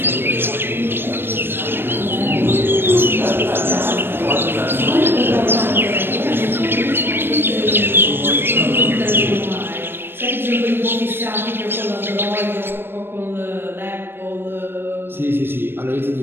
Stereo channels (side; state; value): left; late; 0.10 ms